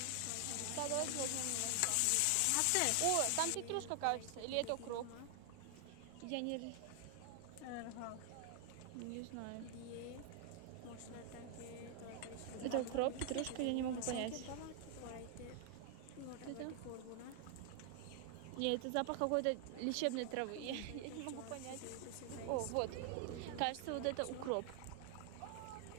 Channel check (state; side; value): different; both; correlation 0.00